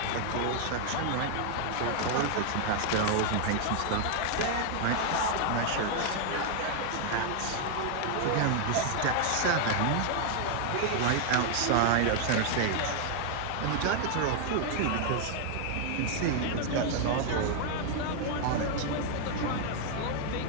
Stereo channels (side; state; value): both; different; correlation 0.00